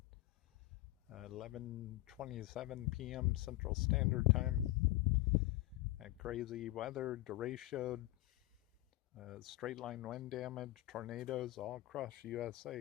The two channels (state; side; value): quieter; right; 17.6 dB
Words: 11:27 p.m. Central Standard Time. Crazy weather, derecho, straight line wind damage, tornadoes all across